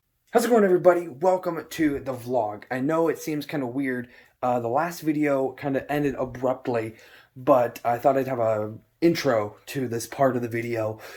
How's it going, everybody? Welcome to the vlog. I know it seems kind of weird. The last video kind of ended abruptly, but I thought I'd have a intro to this part of the video.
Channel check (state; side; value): identical; both; correlation 1.00